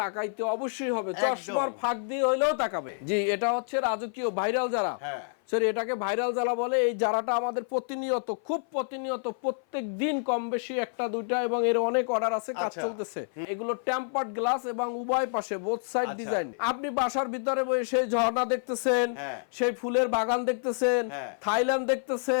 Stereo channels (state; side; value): silent; right; 56 dB below the other